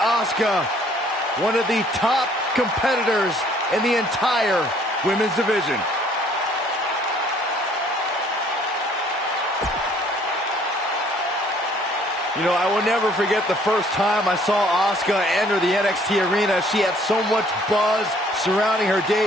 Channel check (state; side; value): normal; both; correlation 0.60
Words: one of the top competitors in the entire women's division. You know, I will never forget the first time I saw Asuka enter the NXT arena. She had so much buzz surrounding her